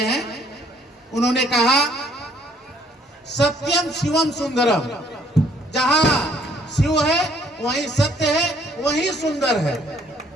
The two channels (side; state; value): both; normal; correlation 0.63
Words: हैं, उन्होंने कहा सत्यम शिवम सुंदरम, जहां शिव है वहीं सत्य है, वहीं सुंदर है।